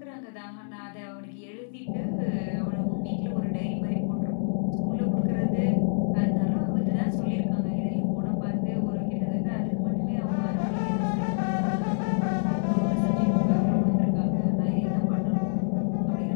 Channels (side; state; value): right; silent; 60 dB below the other